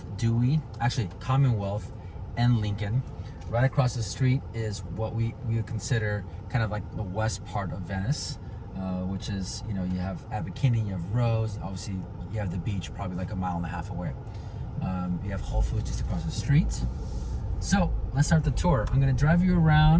Dewey, actually Commonwealth and Lincoln. Right across the street is what we would consider kind of like the west part of Venice. Which is, you have Abercrombie, you have Rose, obviously you have the beach probably like a mile and a half away. You have Whole Foods just across the street. So let's start the tour. I'm gonna drive you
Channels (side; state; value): both; identical; correlation 1.00